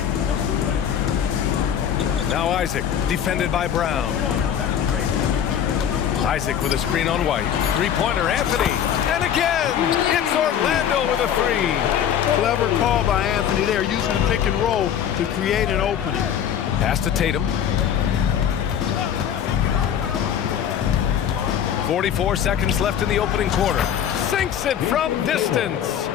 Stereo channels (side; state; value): right; quieter; 9.2 dB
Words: Now Isaac, defended by Brown. Isaac with a screen on White. Three-pointer, Anthony. And again, it's Orlando with a three. Clever call by Anthony there, using the pick and roll to create an opening. Pass to Tatum. 44 seconds left in the opening quarter. Sinks it from distance.